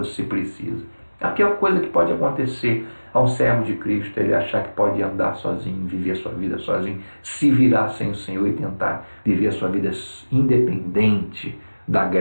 precisa. A pior coisa que pode acontecer a um servo de Cristo é ele achar que pode andar sozinho, viver a sua vida sozinho, se virar sem o Senhor e tentar viver a sua vida independente da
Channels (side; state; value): both; inverted; correlation -1.00